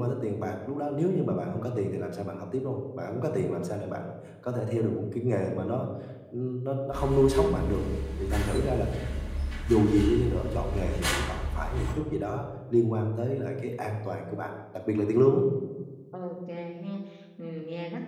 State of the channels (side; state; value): both; identical; correlation 1.00